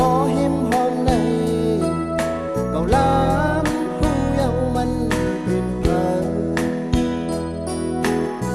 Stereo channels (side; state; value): both; identical; correlation 1.00